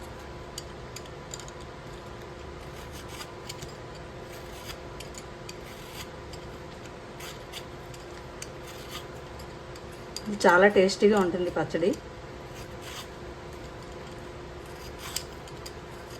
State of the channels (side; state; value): both; identical; correlation 1.00